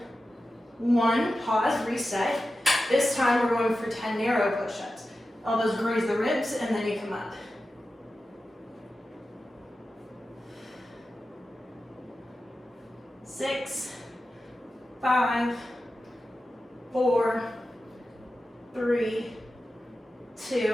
1. Pause, reset. This time we're going for 10 narrow push-ups. Elbows graze the ribs and then you come up. 6, 5, 4, 3,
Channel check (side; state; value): both; normal; correlation 0.93